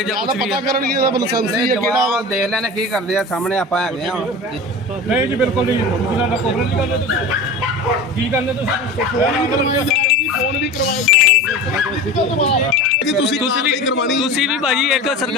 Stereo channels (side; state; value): both; normal; correlation 0.32